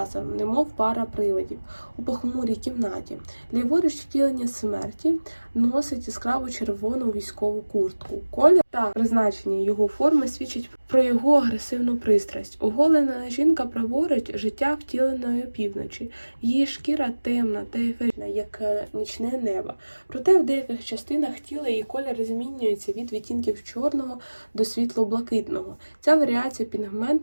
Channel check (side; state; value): both; inverted; correlation -1.00